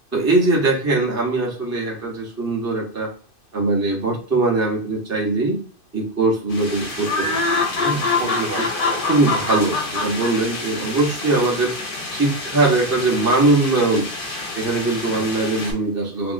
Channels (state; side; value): late; right; 2.6 ms